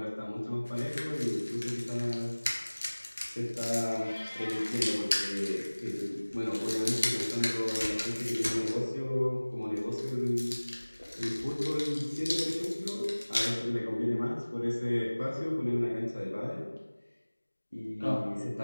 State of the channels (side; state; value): both; inverted; correlation -1.00